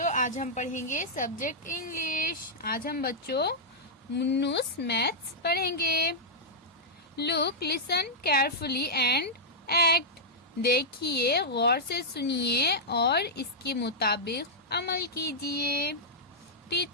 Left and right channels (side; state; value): both; normal; correlation -0.07